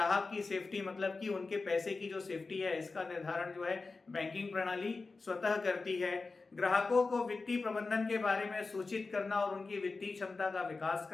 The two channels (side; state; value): right; quieter; 3.9 dB